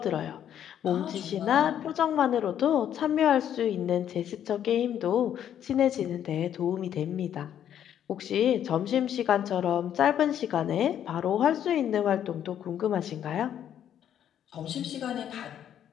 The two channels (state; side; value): quieter; right; 10.0 dB